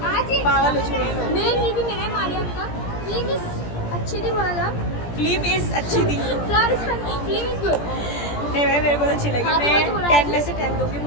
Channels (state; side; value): late; right; 17 ms